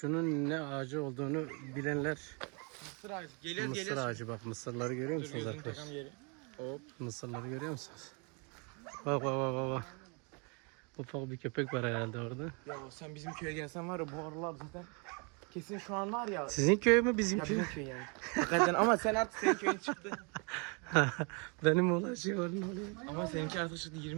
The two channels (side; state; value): left; quieter; 33.6 dB